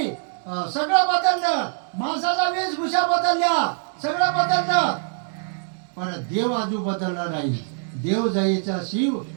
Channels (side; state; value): left; silent; 63 dB below the other